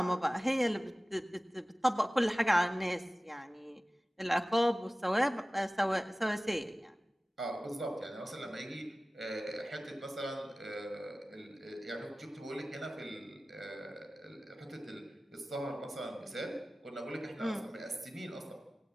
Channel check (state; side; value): normal; both; correlation 0.97